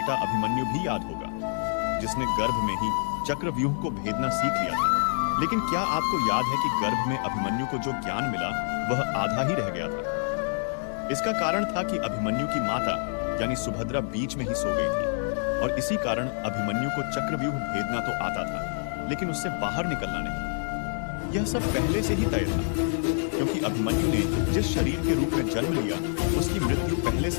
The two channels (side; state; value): right; silent; digital silence